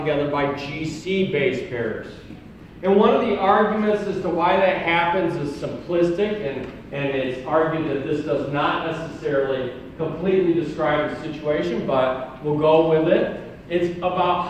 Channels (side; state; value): both; identical; correlation 1.00